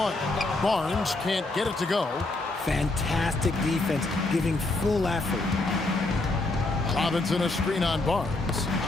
Barnes can't get it to go. Fantastic defense, giving full effort. Robinson a screen on Barnes.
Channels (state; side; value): quieter; right; 3.0 dB